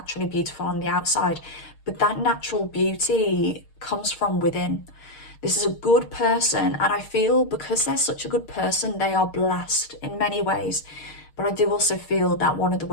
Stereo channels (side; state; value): right; late; 6.5 ms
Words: beautiful on the outside, but that natural beauty comes from within. This is a good person, and I feel because they're such a good person, they are blessed in many ways. But I do also feel that one of the